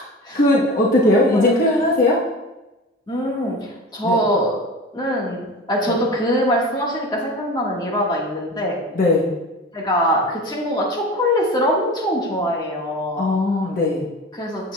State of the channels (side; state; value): both; normal; correlation 0.33